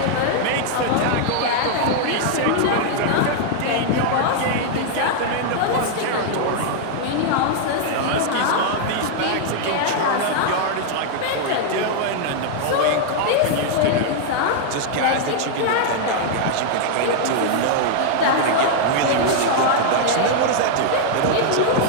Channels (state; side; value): different; both; correlation -0.01